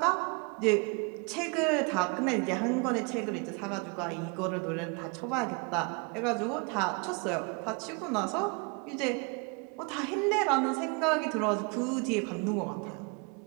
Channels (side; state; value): left; quieter; 32.6 dB